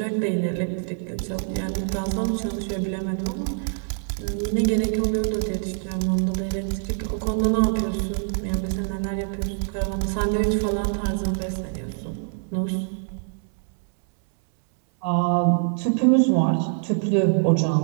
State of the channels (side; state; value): left; silent; 62 dB below the other